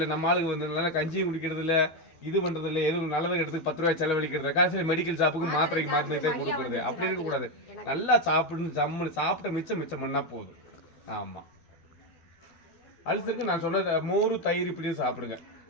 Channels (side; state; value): right; late; 12 ms